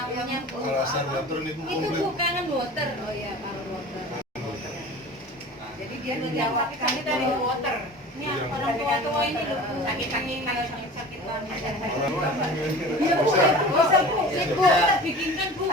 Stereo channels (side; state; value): both; normal; correlation 0.39